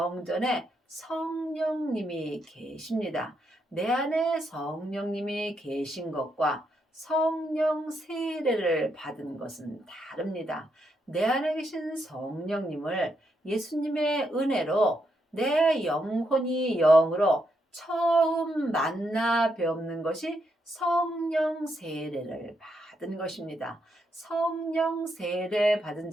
성령님이 계십니다. 내 안에 성령님이 계신 것과 성령 세례를 받은 것은 다릅니다. 내 안에 계신 성령님을 예수님의 은혜로 내 영혼이 영으로 처음 만나 뵙는 것이 성령 세례를 받은 것입니다. 성령 세례 받은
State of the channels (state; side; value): normal; both; correlation 0.79